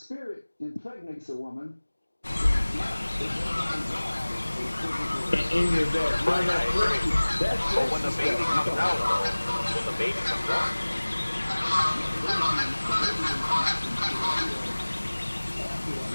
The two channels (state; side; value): inverted; both; correlation -1.00